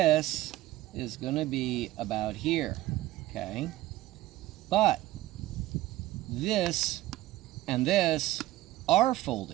is going to be about here, okay? But this and this are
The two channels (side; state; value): left; quieter; 16.2 dB